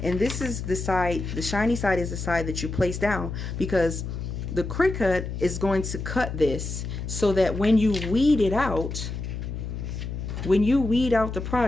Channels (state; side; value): noise; left; hum, 6 dB below the sound